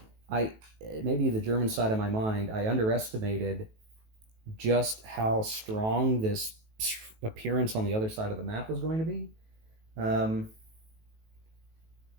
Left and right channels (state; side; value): late; left; 18 ms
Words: I maybe the German side of my mind, I underestimated just how strong this appearance on the other side of the map was going to be.